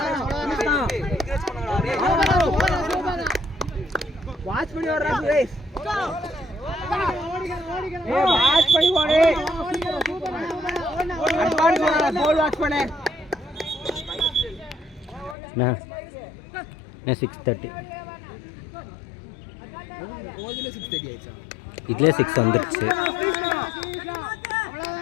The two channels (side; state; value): right; drops out; at 15.4 s